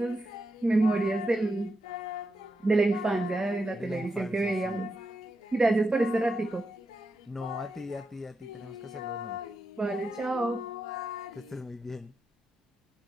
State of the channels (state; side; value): normal; both; correlation 0.86